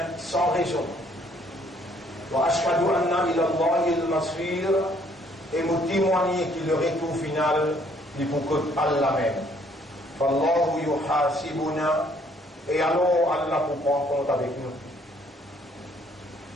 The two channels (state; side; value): normal; both; correlation 0.64